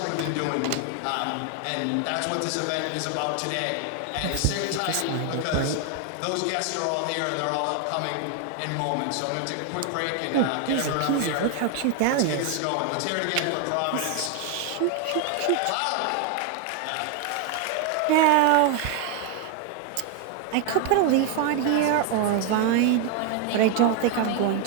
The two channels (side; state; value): both; different; correlation 0.01